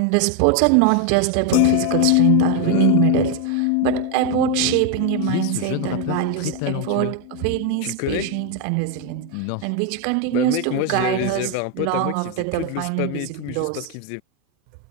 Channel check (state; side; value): different; both; correlation 0.01